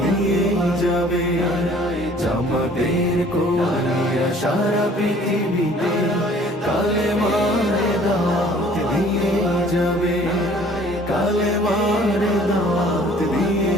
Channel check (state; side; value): normal; both; correlation 0.54